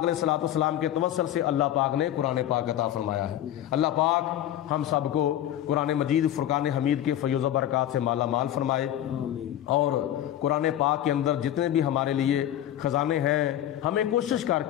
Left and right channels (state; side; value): quieter; right; 12.0 dB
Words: الصلوۃ والسلام کے توسل سے اللہ پاک نے قرآن پاک عطا فرمایا ہے. اللہ پاک ہم سب کو قرآن مجید فرقان حمید کے فیض و برکات سے مالا مال فرمائے اور قرآن پاک کے اندر جتنے بھی ہمارے لیے خزانے ہیں ہمیں کوشش کر